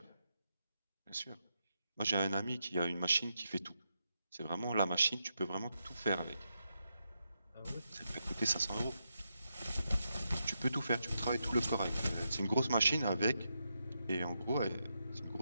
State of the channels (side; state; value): both; inverted; correlation -0.84